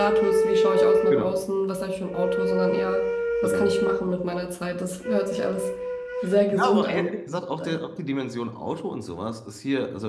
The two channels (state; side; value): identical; both; correlation 1.00